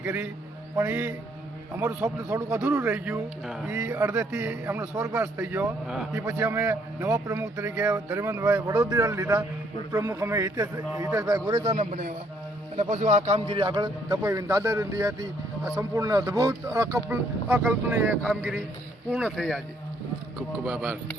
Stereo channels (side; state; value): both; normal; correlation 0.68